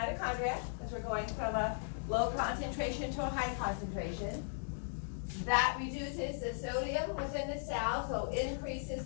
because we're going from a low concentration to a high concentration. That reduces the sodium within the cell, so increases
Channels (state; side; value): silent; right; digital silence